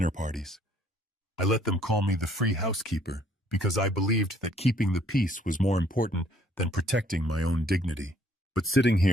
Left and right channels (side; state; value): both; normal; correlation 0.63